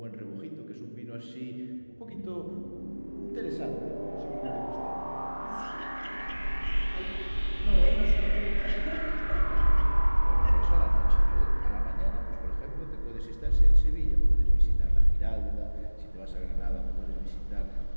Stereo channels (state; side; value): inverted; both; correlation -1.00